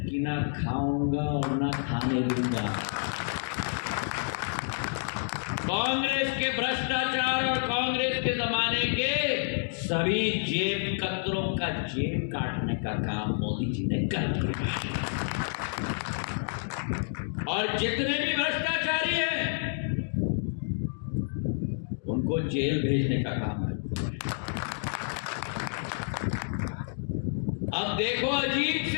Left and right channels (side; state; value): right; silent; digital silence